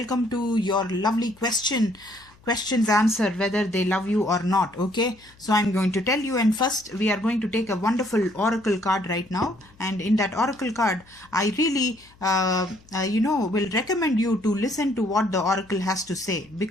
to your lovely questions answer whether they love you or not. Okay, so I'm going to tell you, and first we are going to take a wonderful oracle card right now, and in that oracle card I really will recommend you to listen to what the oracle has to say,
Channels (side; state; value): left; noise; hum, 28 dB below the sound